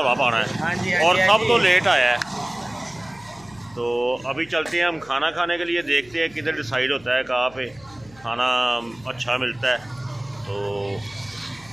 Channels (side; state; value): left; noise; hum, 25 dB below the sound